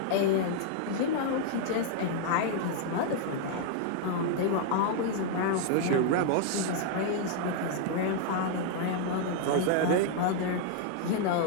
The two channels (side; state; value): both; different; correlation 0.00